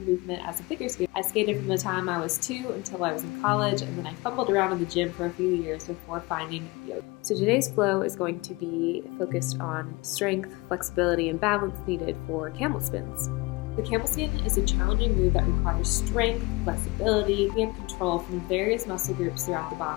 movement as a figure skater. I skated from the time I was 2 until I was in college, and then I fumbled around in the gym for a few years before finding yoga. So today's flow is going to be focused on strength, flexibility, and balance needed for camel spins. The camel spin is a challenging move that requires strength, flexibility, and control from various muscle groups throughout the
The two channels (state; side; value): quieter; right; 24.0 dB